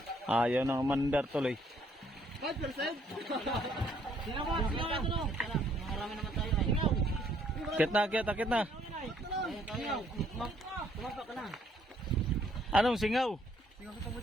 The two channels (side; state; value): both; normal; correlation 0.66